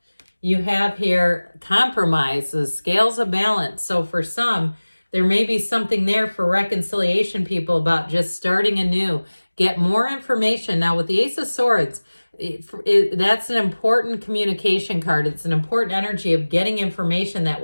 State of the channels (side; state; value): both; inverted; correlation -1.00